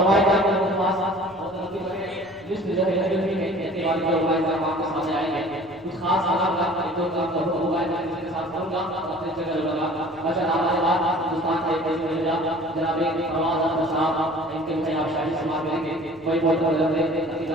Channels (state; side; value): noise; left; rumble, 27 dB below the sound